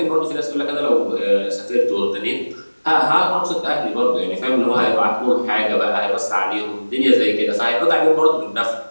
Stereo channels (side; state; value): both; inverted; correlation -1.00